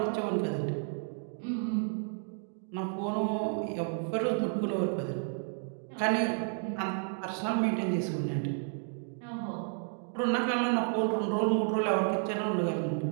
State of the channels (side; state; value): left; silent; 57 dB below the other